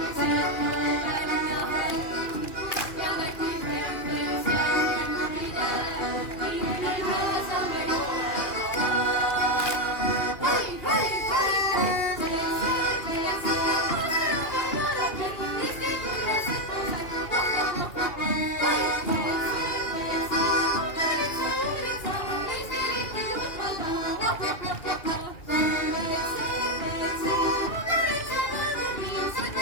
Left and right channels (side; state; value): right; late; 2.4 ms